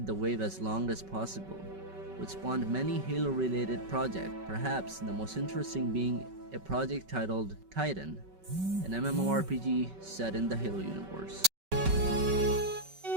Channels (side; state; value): left; late; 5.3 ms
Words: the wave as long as possible, which spawned many Halo-related projects, perhaps the most interesting being a project titled Titan, an MMORPG set in the Halo universe.